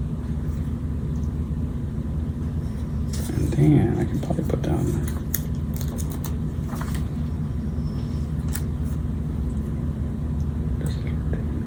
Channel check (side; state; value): both; identical; correlation 1.00